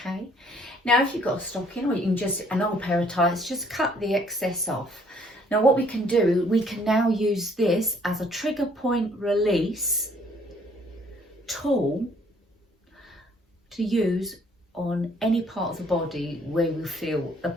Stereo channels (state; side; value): normal; both; correlation 0.62